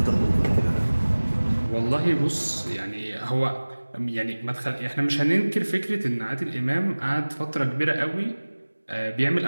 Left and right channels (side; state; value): both; inverted; correlation -1.00